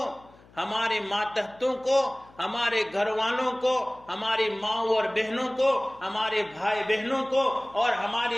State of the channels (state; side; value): noise; left; hum, 26 dB below the sound